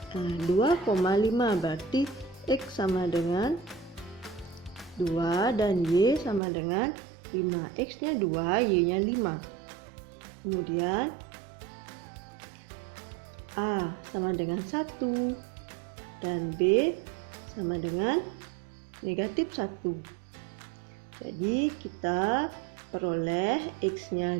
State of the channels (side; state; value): left; drops out; at 6.4 s